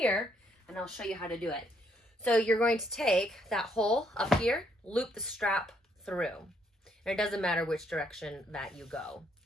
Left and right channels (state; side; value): normal; both; correlation 0.71